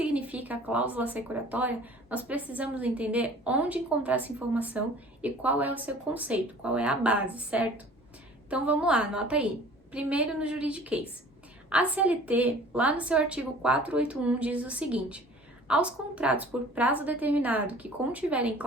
a cláusula assecuratória, nós precisamos entender onde encontrar essa informação e qual é o seu conceito, qual é a base, certo? Então vamos lá, anota aí. Primeiro no juridiquês. A CLT, lá no seu artigo 481, diz o seguinte: aos contratos por prazo determinado que contiverem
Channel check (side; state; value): both; normal; correlation 0.47